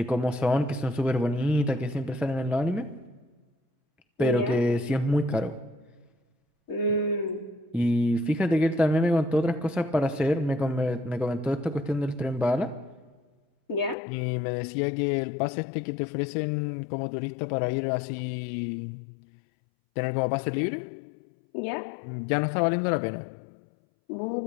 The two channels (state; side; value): drops out; right; at 14.0 s